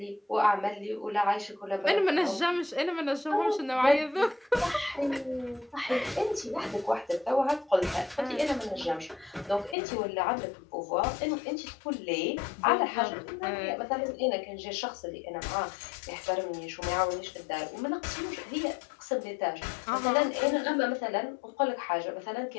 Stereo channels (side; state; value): right; drops out; at 9.8 s